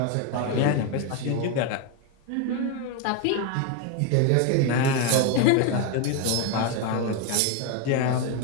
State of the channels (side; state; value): both; different; correlation 0.02